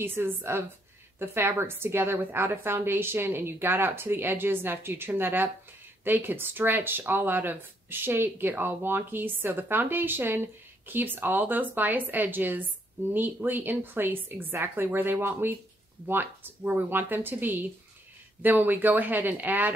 of the fabrics together without a foundation and you got out to the edges, and after you trim that up, they could stretch all out of shape, get all wonky. So the foundation keeps all those bias edges neatly in place exactly where we want them to be. Then when we go ahead and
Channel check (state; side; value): normal; both; correlation 0.72